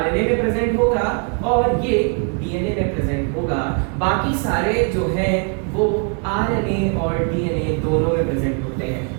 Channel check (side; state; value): left; quieter; 39.7 dB